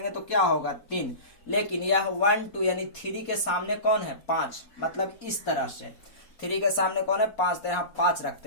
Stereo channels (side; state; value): right; late; 4.2 ms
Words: तो क्या होगा 3, लेकिन यह 1 2 यानी 3 के सामने कौन है 5, मतलब इस तरह से 3 के सामने कौन है 5, तो यहाँ 5